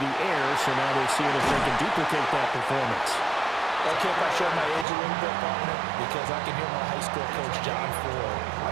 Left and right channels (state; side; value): drops out; left; at 4.9 s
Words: air, so now they're seeing if they can duplicate that performance. Okay, if I show my age a little bit, partner, because I can hear my high school coach, John Ford. I